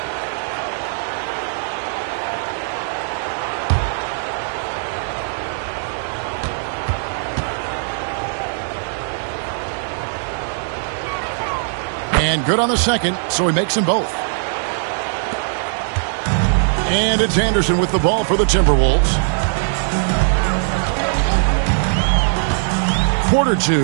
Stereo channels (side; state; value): left; silent; 66 dB below the other